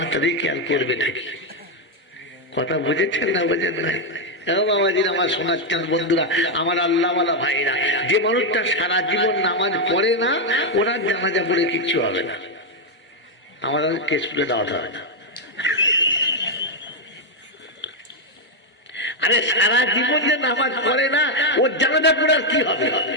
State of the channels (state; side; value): normal; both; correlation 0.02